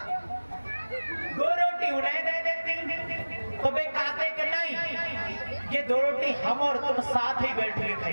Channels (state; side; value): inverted; both; correlation -1.00